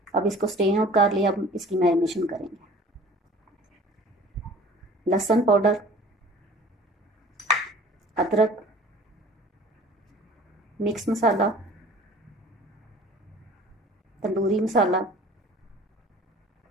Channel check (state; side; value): normal; both; correlation 0.47